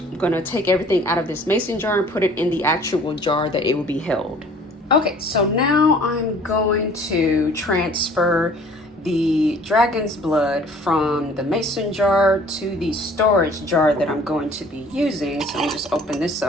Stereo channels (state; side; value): normal; both; correlation 0.52